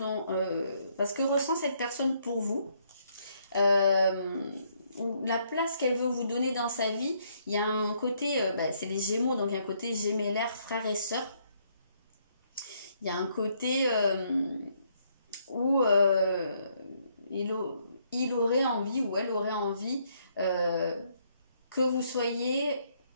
parce que ressent cette personne pour vous, la place qu'elle veut vous donner dans sa vie, il y a un côté, c'est les Gémeaux, donc il y a un côté gémellaire, frère et sœur. Il y a un côté où il aurait envie, ou elle aurait envie que vous soyez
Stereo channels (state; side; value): inverted; both; correlation -0.71